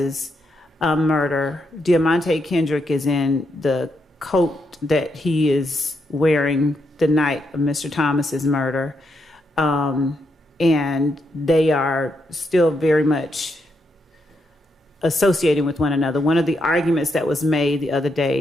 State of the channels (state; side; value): normal; both; correlation 0.81